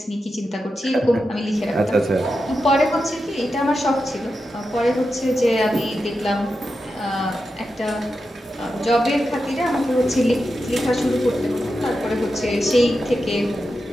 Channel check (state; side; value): normal; both; correlation 0.89